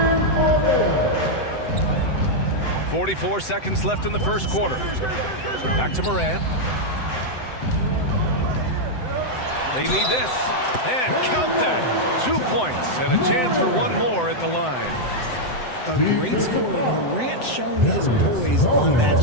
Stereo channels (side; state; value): right; late; 7.8 ms